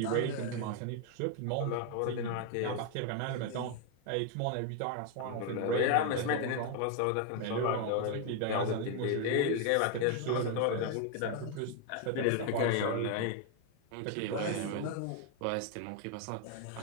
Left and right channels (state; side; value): different; both; correlation 0.01